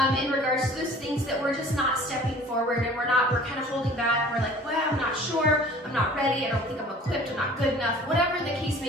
in regards to those things that we're just not stepping forward and we're kind of holding back. We're like, well, I'm not sure, I'm not ready, I don't think I'm equipped, I'm not good enough, whatever the case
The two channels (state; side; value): normal; both; correlation 0.48